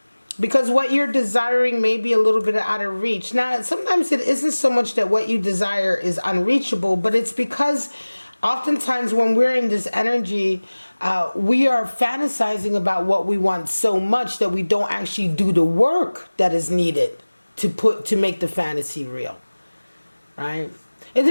because what you're desiring may be a little bit out of reach. Now, sometimes it isn't so much that what you desire is unreachable, but it's because oftentimes when we're in this energy, we are fantasizing about what we want so much that we don't actually do the work that is needed to make the fantasy real, right? It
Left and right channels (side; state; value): both; inverted; correlation -1.00